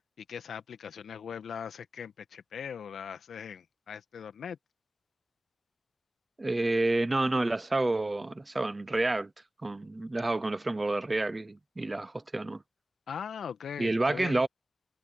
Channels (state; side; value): normal; both; correlation 0.97